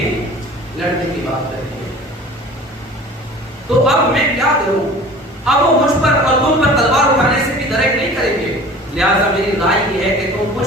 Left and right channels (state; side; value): normal; both; correlation 0.43